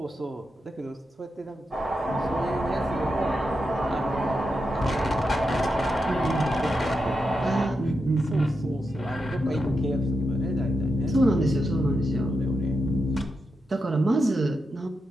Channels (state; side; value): normal; both; correlation 0.87